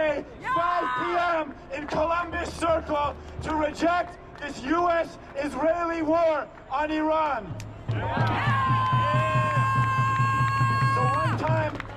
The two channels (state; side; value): identical; both; correlation 1.00